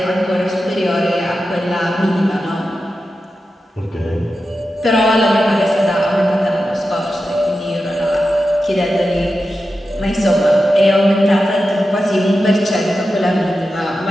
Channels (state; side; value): normal; both; correlation 0.91